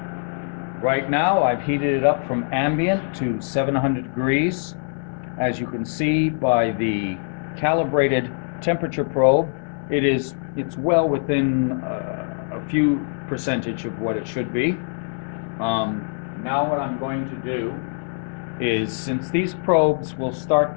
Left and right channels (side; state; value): right; silent; 63 dB below the other